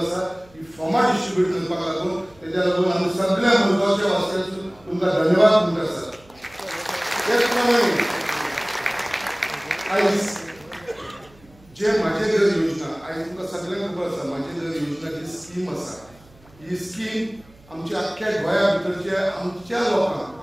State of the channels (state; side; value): noise; right; hum, 27 dB below the sound